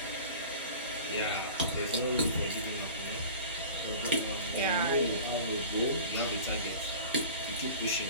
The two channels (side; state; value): both; inverted; correlation -0.39